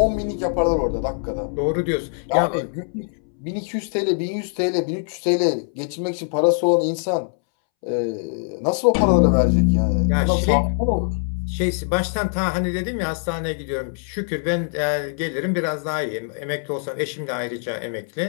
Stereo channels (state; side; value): silent; right; 64 dB below the other